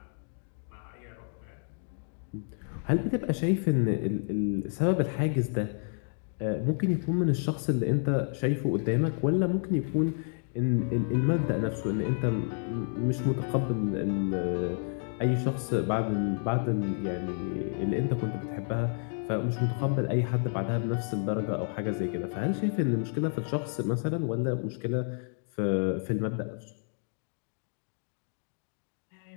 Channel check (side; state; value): right; silent; 58 dB below the other